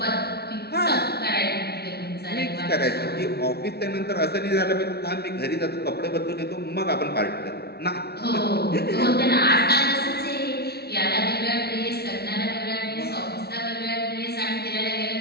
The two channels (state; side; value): late; right; 0.47 ms